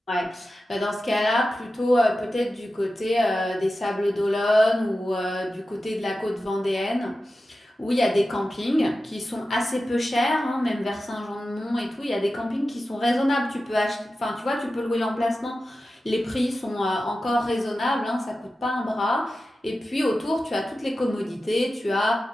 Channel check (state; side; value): normal; both; correlation 0.93